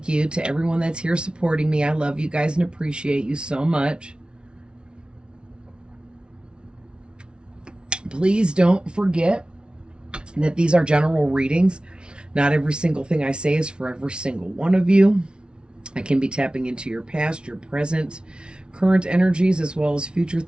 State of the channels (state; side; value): late; left; 0.056 ms